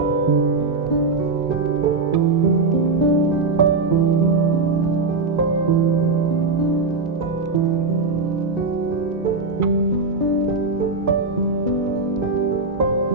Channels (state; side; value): quieter; left; 3.9 dB